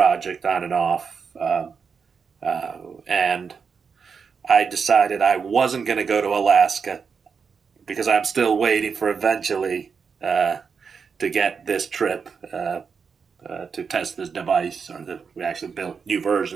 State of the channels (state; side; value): quieter; left; 5.9 dB